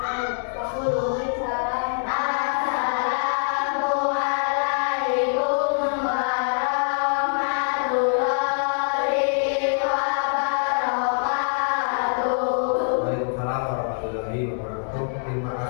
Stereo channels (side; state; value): right; silent; digital silence